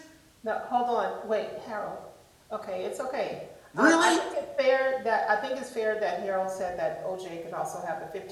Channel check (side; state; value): both; identical; correlation 1.00